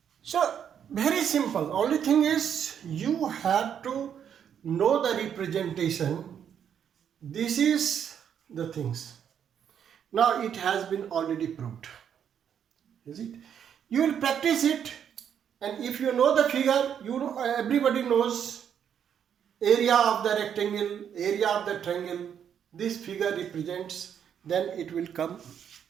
So very simple. Only thing is you have to know the representation. This is the things. Now it has been already proved. Is it? You will practice it, and if you know the figure, you know, everybody knows area of the rectangle, area of the triangle. This figure represents, then it will come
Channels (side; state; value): left; quieter; 8.5 dB